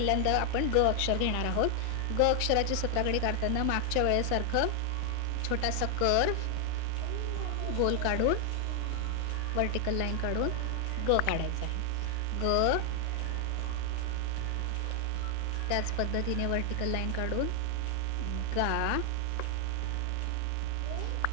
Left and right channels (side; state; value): both; different; correlation 0.00